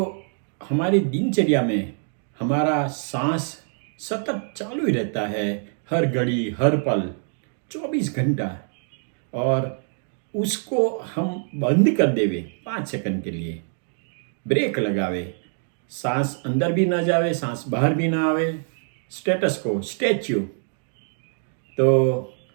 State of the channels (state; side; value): silent; left; 57 dB below the other